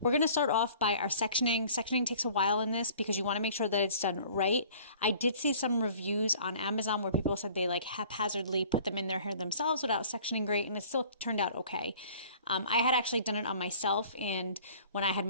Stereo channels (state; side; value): inverted; both; correlation -0.50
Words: we're going to start off by our sectioning. Sectioning takes a while in this because you want to make sure that it's done right. I did see some reviews on Amazon where people said they like haphazardly put them in their hair themselves without sectioning great, and it still turned out okay. I had actually done it on myself, and when I had